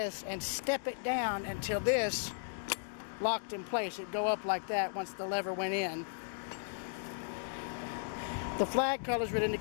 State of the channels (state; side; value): silent; right; digital silence